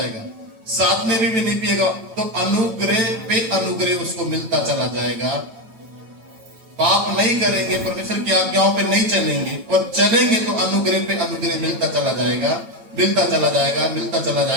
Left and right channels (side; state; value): left; late; 9.0 ms